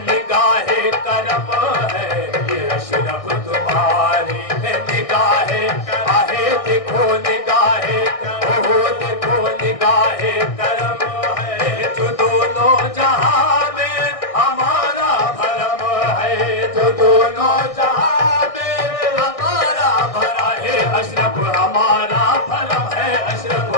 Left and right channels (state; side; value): late; right; 1.6 ms